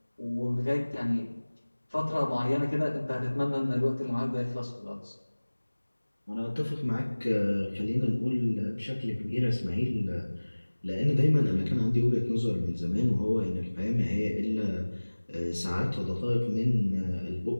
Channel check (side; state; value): both; inverted; correlation -1.00